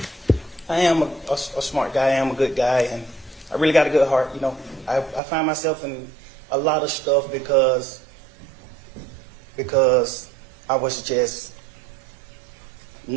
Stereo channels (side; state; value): left; drops out; at 5.2 s